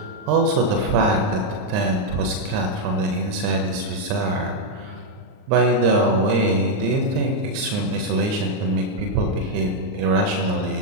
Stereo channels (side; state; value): left; late; 38 ms